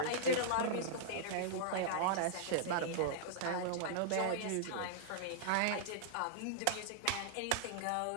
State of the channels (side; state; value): both; different; correlation -0.02